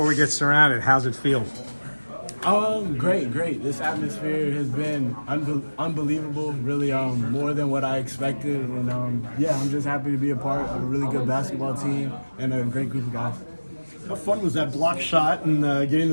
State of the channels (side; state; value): both; inverted; correlation -1.00